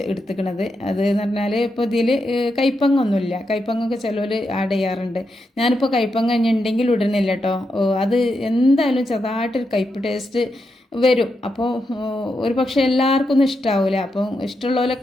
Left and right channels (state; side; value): normal; both; correlation 0.85